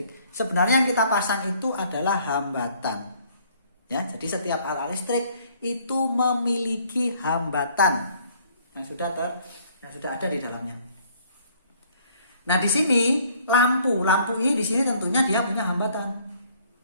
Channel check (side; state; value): both; inverted; correlation -0.61